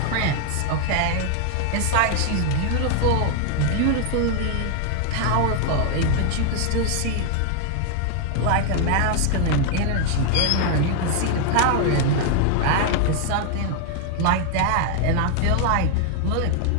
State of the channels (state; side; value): different; both; correlation 0.00